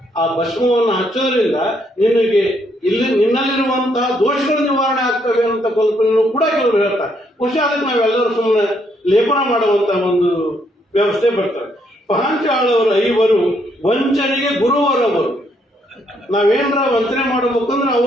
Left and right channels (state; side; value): normal; both; correlation 0.72